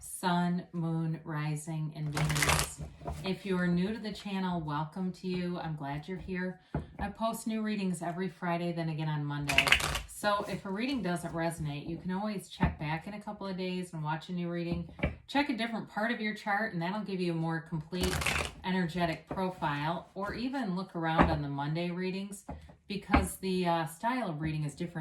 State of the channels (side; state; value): both; identical; correlation 1.00